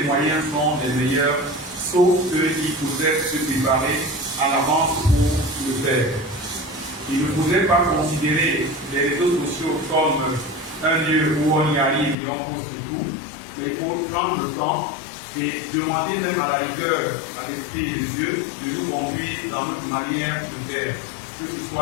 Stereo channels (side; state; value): right; drops out; at 12.2 s